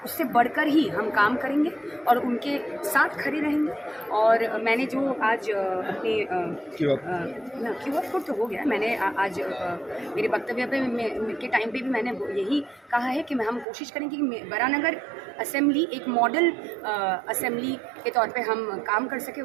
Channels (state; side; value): drops out; left; at 13.7 s